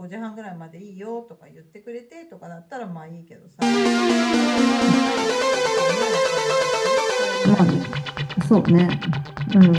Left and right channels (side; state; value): both; identical; correlation 1.00